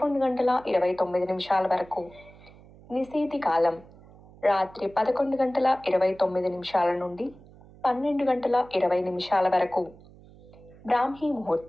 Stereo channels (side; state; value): right; noise; hum, 23 dB below the sound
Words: వరకు. నిశీతి కాలం రాత్రి 11:29 నుండి 12:20 వరకు. బ్రాహ్మీ